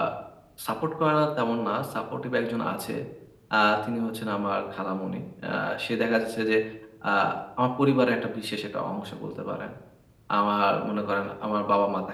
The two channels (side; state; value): both; identical; correlation 1.00